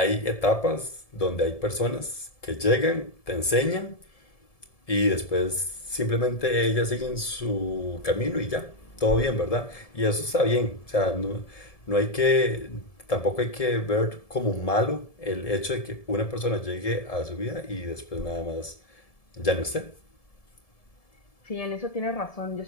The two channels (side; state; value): right; late; 1.7 ms